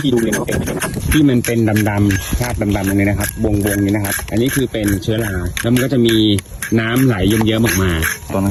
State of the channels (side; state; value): both; identical; correlation 1.00